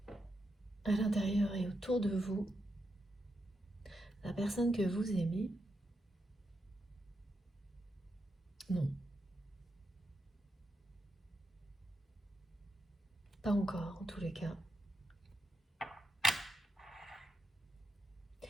À l'intérieur et autour de vous, la personne que vous aimez, non. Pas encore, en tous les cas.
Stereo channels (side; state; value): both; normal; correlation 0.85